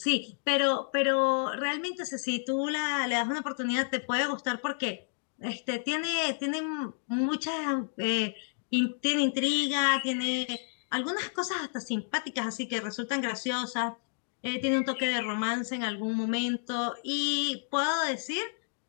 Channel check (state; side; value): silent; right; digital silence